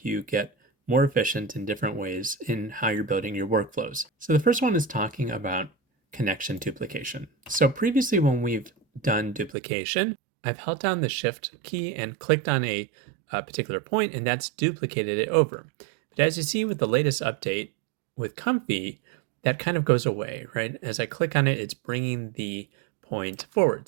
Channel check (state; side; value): drops out; left; at 9.5 s